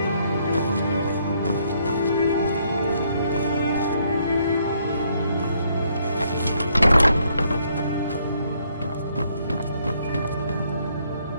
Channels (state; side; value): inverted; both; correlation -0.70